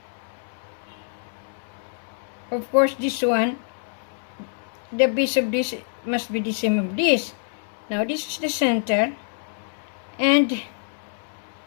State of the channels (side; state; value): right; silent; 61 dB below the other